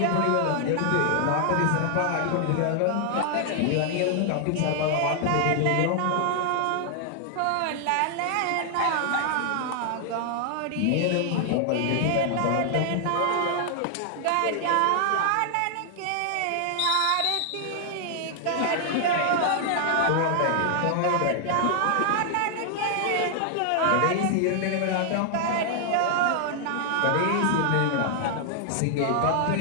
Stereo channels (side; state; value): both; different; correlation 0.00